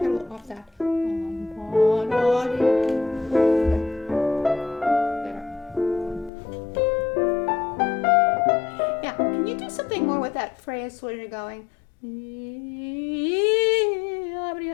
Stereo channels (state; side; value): drops out; right; at 6.3 s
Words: off that. Can you do something more with that phrase where you're going?